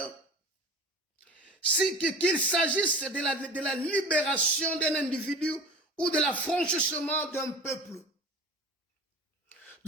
qu'il s'agisse de la libération d'un individu ou de l'affranchissement d'un peuple.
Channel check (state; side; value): normal; both; correlation 0.37